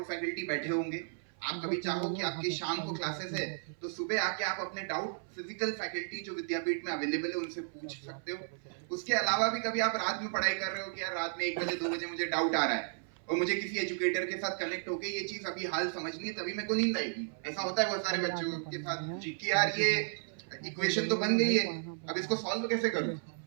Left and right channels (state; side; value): silent; left; 55 dB below the other